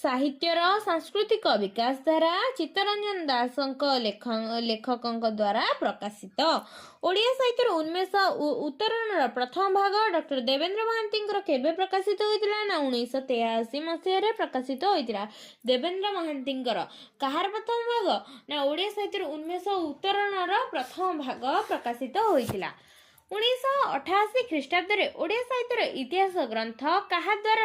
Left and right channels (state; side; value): identical; both; correlation 1.00